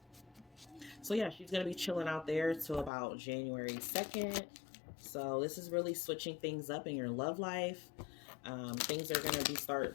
so yeah, she's going to be chilling out there till about January 2nd. So this is really switching things up in your love life. Things are going to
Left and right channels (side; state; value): right; drops out; at 2.9 s